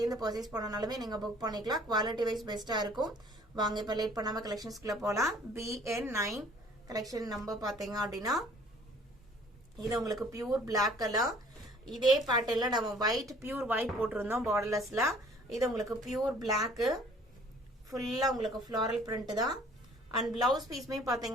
பர்ச்சேஸ் பண்ணனாலுமே நீங்க புக் பண்ணிக்கலாம். குவாலிட்டி வைஸ் பெஸ்டா இருக்கும். வாங்க இப்ப லேட் பண்ணாம கலெக்ஷன்ஸ்க்குள்ள போலாம். BN9 கலெக்ஷன் நம்பர் பாத்தீங்க அப்படின்னா இது உங்களுக்கு பியூர் Black கலர். இதே பேட்டர்ன்ல நம்ம பியூர் ஒயிட் போட்டிருந்தோம் பார்டர்லெஸ்ல. இது உங்களுக்கு பியூர் Black, ஃபுல்லா உங்களுக்கு ஃப்ளாரல் பிரிண்ட் தான். அண்ட் பிளவுஸ் பீஸ்மே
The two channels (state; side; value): normal; both; correlation 0.55